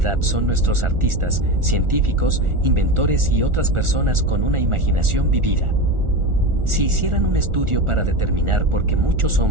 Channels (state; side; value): late; left; 1.4 ms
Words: son nuestros artistas, científicos, inventores y otras personas con una imaginación vivida. Si hicieran un estudio para determinar por qué muchos